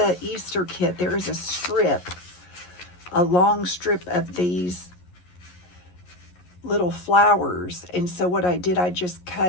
Easter kit, there is a strip, a long strip of these little flowers. And so what I did, I just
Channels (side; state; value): right; late; 11 ms